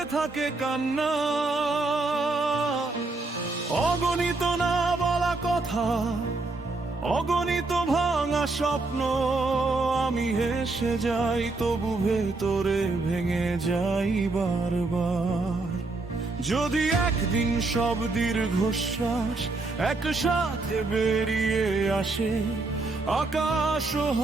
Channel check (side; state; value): left; quieter; 3.4 dB